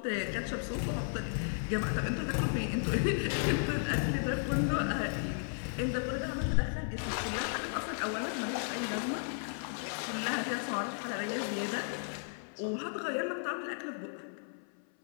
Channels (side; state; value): right; silent; 55 dB below the other